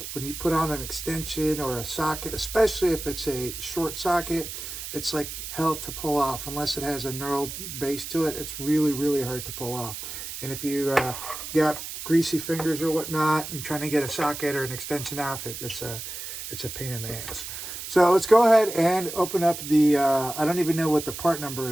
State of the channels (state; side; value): noise; right; hiss, 8 dB below the sound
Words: put on an extension or a socket, especially if it's a short socket, it's like hell to pull off. Unless it has a knurled base to it, it's really, really hard to pull off. And if you got greasy fingers or whatnot and trying to get a socket or an extension off it, it's a pain in the ass. So let's go ahead and open up the I don't even know what the part number